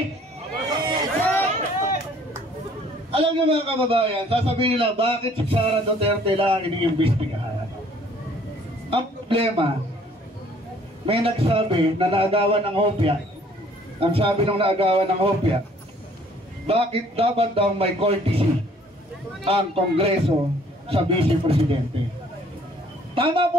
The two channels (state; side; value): normal; both; correlation 0.58